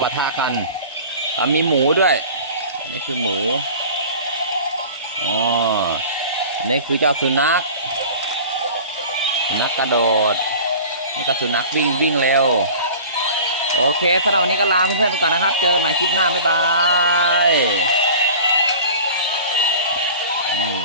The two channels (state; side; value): inverted; both; correlation -0.40